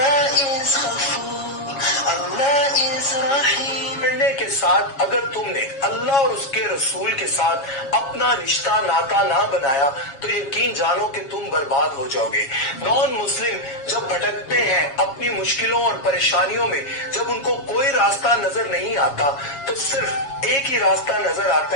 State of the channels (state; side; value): late; right; 7.2 ms